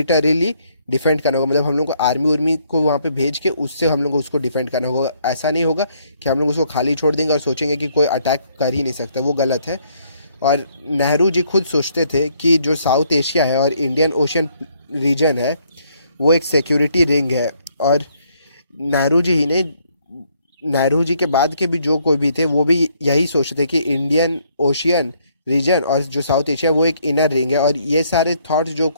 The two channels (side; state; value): both; inverted; correlation -0.69